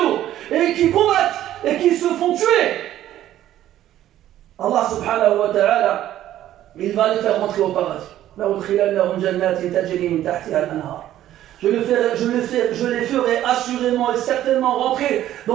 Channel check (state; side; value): quieter; left; 12.7 dB